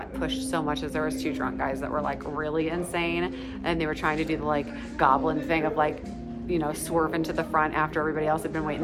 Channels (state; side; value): identical; both; correlation 1.00